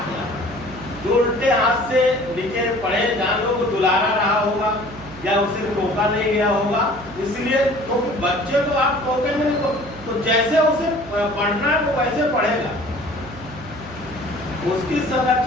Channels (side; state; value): right; noise; hum, 17 dB below the sound